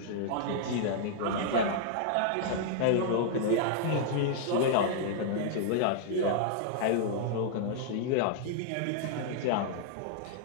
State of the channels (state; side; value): different; both; correlation -0.01